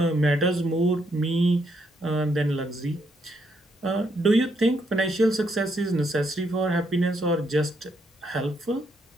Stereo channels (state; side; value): normal; both; correlation 0.75